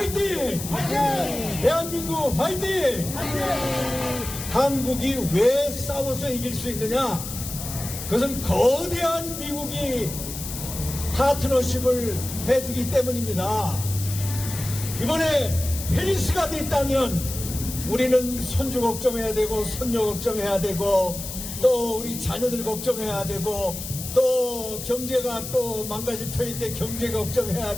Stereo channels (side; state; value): left; noise; hiss, 8 dB below the sound